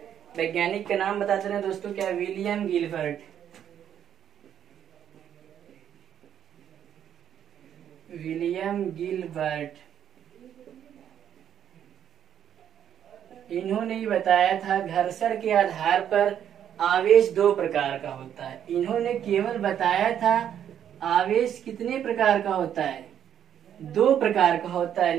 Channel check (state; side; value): quieter; left; 9.6 dB